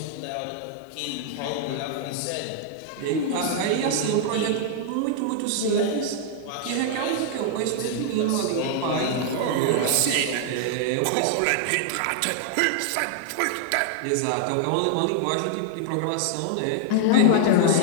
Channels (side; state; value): both; different; correlation -0.01